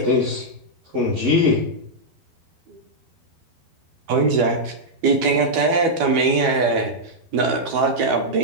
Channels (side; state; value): left; late; 12 ms